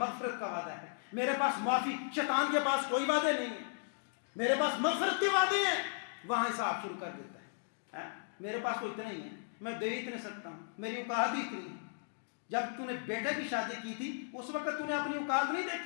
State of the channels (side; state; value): right; silent; digital silence